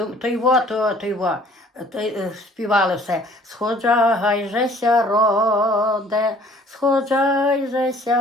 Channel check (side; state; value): both; normal; correlation 0.55